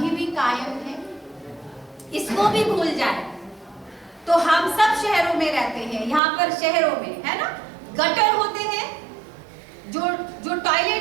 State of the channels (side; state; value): left; drops out; at 6.2 s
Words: भी कायम है, इसको भी भूल जाए। तो हम सब शहरों में रहते हैं, यहाँ पर शहरों में है ना, गटर होते हैं, जो